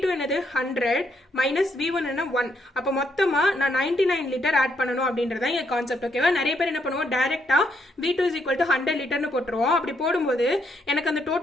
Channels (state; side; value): normal; both; correlation 0.75